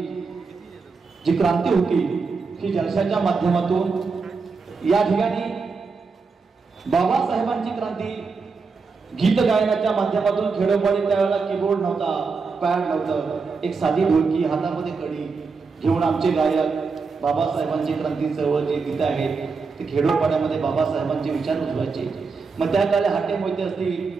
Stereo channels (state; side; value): quieter; left; 4.7 dB